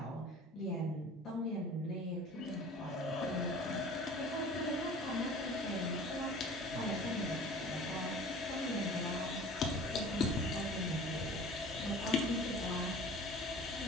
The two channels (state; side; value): normal; both; correlation 0.43